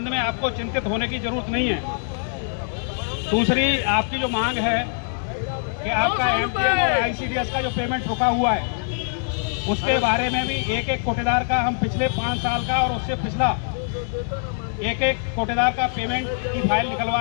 में आपको चिंतित होने की जरूरत नहीं है। दूसरी आपकी जो मांग है कि आपका एमटीएन और आईसीडीएस का जो पेमेंट रुका हुआ है उसके बारे में भी एक एक कोटेदार का हम पिछले 5 साल का और उससे पिछला एक एक कोटेदार का पेमेंट की फाइल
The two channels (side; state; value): right; silent; 63 dB below the other